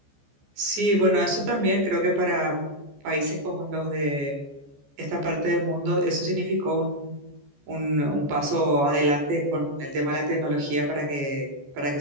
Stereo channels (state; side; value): late; left; 14 ms